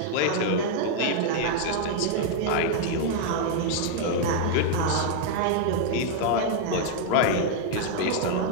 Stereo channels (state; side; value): different; both; correlation 0.00